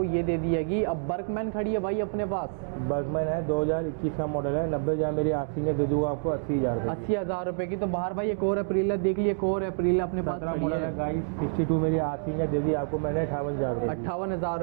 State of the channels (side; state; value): left; silent; digital silence